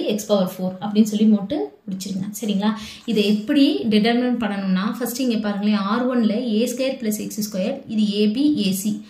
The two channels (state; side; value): identical; both; correlation 1.00